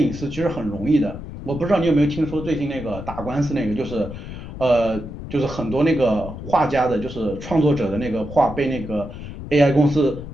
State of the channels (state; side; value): noise; left; rumble, 11 dB below the sound